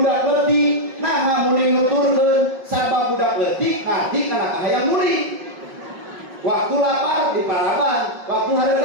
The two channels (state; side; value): late; left; 5.4 ms